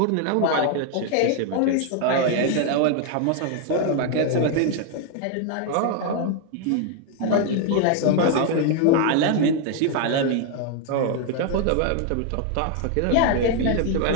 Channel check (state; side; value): different; both; correlation 0.01